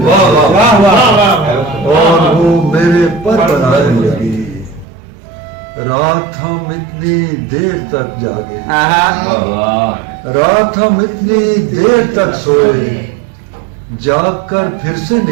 और वो मेरे पर बनाने लगी। रात हम इतनी देर तक जागे, रात हम इतनी देर तक सोए, जाग कर फिर से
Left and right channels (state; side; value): drops out; left; at 4.9 s